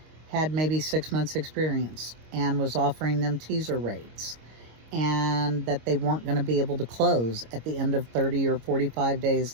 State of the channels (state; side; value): late; left; 26 ms